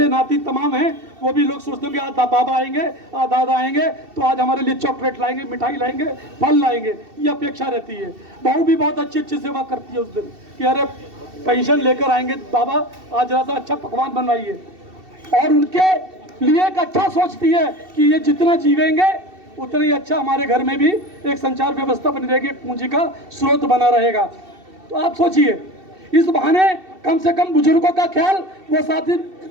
नाती तमाम हैं, वो भी लोग सोचते हैं कि आज बाबा आएंगे, आज दादा आएंगे तो आज हमारे लिए चॉकलेट लाएंगे, मिठाई लाएंगे, फल लाएंगे, ये अपेक्षा रहती है। बहू भी बहुत अच्छी अच्छी सेवा करती है उस दिन कि अरे पेंशन लेकर आएंगे बाबा, आज जरा सा अच्छा पकवान बनवाइए। और उनके लिए एक अच्छा सोचती है कि ये जितना जीवेंगे उतना ही अच्छा हमारे घर में भी एक संचार व्यवस्था बनी रहेगी, एक पूंजी का स्रोत बना रहेगा। तो आप सोचिए, इस बहाने कम से कम बुजुर्गों का ख्याल वो साथी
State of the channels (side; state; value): left; late; 2.7 ms